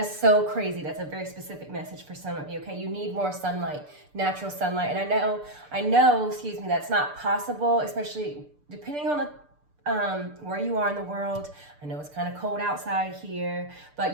is so crazy. That's a very specific message for some of you, okay? You need more sunlight, natural sunlight. And I know, that's not possible, especially depending on the where you are in the world. I know it's kind of cold outside here,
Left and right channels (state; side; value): late; left; 6.8 ms